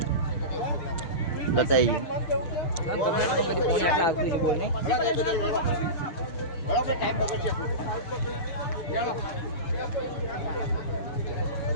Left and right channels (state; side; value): late; right; 6.7 ms